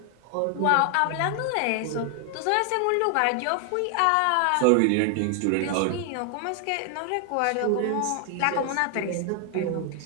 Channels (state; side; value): different; both; correlation 0.00